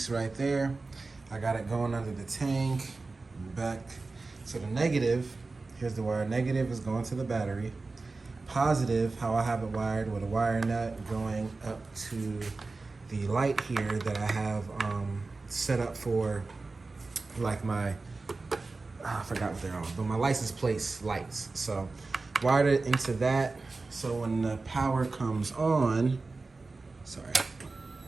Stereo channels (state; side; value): quieter; left; 3.7 dB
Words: right there. I got it going under the tank, back. So the negative, here's the wire. Negative is going to the battery. Positive, how I have it wired, with a wire nut going up to the light here that I have set up for, like my, I forgot what they're on, but my license plate lights. So wired it into that, so when the power comes on, sorry,